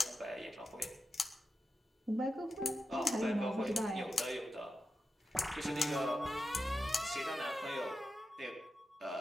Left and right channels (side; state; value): both; normal; correlation 0.90